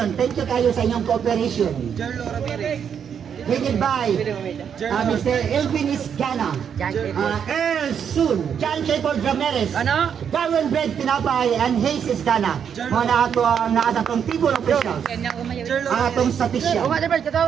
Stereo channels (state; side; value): quieter; left; 7.8 dB